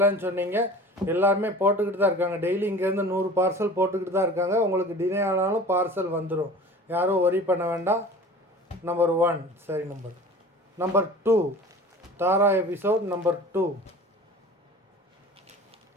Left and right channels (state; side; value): normal; both; correlation 0.41